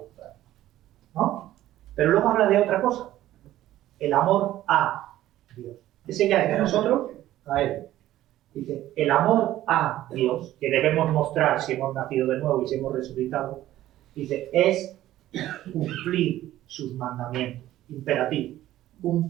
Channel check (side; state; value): left; quieter; 14.1 dB